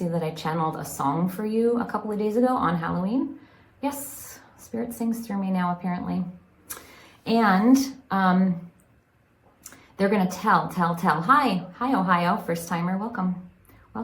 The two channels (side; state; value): both; identical; correlation 1.00